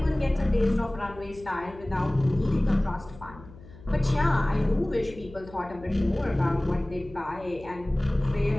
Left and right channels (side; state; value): left; noise; hum, 19 dB below the sound